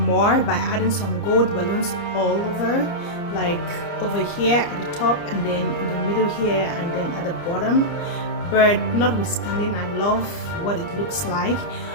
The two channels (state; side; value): late; right; 30 ms